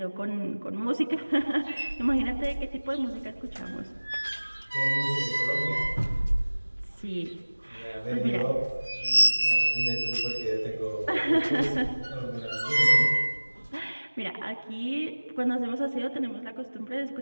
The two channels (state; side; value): inverted; both; correlation -1.00